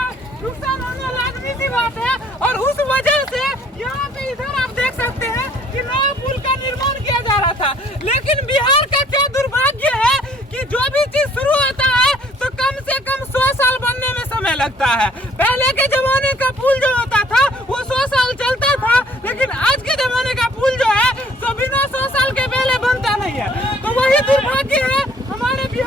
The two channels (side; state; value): both; normal; correlation 0.59